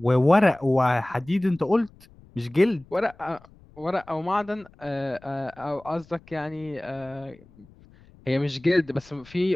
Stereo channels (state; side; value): noise; left; rumble, 26 dB below the sound